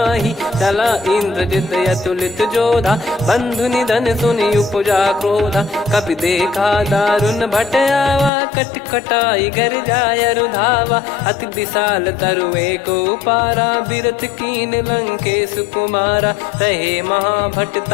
चला इंद्रजित अतुलित जोधा, बंधु निधन सुनि उपजा क्रोधा। कपि देखा दारुण भट आवा, कट कटाई गर जाय रुधावा। अति विशाल तरुए को पारा, बिरत कीन लंकेश कुमारा। रहे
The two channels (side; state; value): right; drops out; at 8.3 s